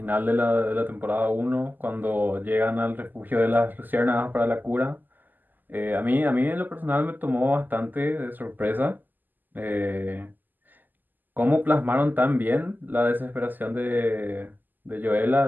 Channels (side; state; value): left; late; 0.087 ms